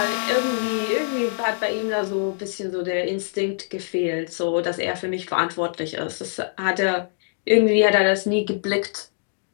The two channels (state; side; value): silent; right; digital silence